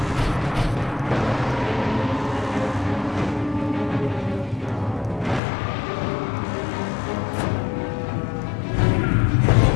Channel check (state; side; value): drops out; right; at 5.4 s